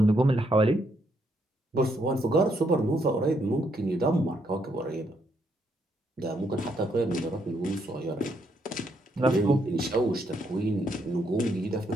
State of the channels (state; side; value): normal; both; correlation 0.74